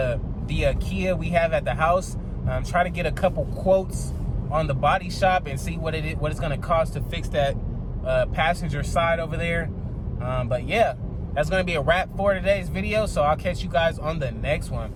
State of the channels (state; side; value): identical; both; correlation 1.00